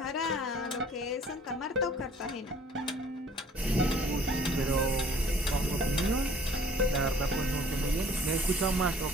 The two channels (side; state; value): both; normal; correlation 0.54